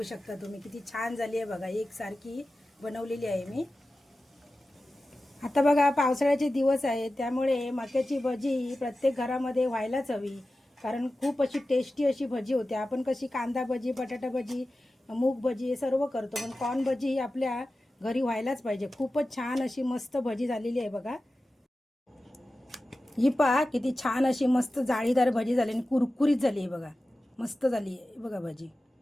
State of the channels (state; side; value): normal; both; correlation 0.94